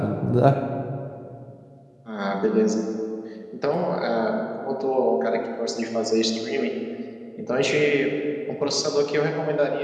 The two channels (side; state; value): both; identical; correlation 1.00